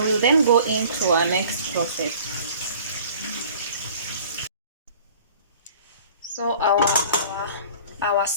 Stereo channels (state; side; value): inverted; both; correlation -0.48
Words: we'll then go into our next process. So our